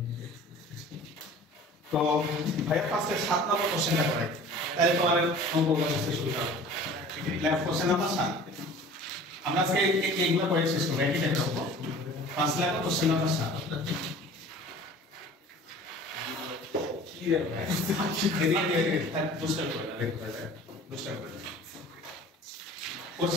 তো ভাইয়া ফার্স্টে 7 নম্বর কোশ্চেনটা করাই তাহলে তোমার অঙ্ক করতে শুরু করো। লেফট কোশ্চেন নাম্বার 7 আমরা আজকে এইগুলো করে শেষ করব একই টাইপের অঙ্ক। ফার্স্ট লেফট কোশ্চেন নাম্বার 7 কি রে ভাই এদিকে বুস্টার করে না দেখো বুস্টার করে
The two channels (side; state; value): both; normal; correlation 0.44